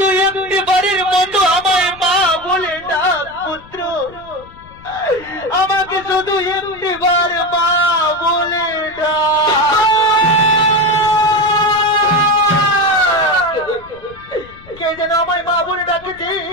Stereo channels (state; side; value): noise; left; rumble, 23 dB below the sound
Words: একটিবারের মতো আমায় মা বলে ডাক পুত্র, আমাকে শুধু একটিবার মা বলে ডাক। কে যেন আমায় মা বলে ডাকেছে,